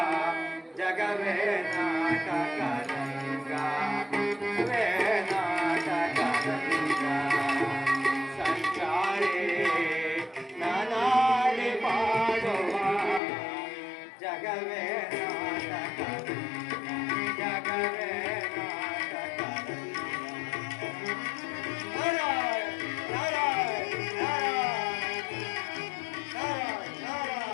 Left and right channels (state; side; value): drops out; right; at 13.2 s